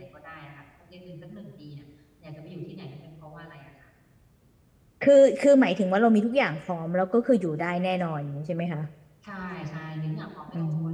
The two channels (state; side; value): identical; both; correlation 1.00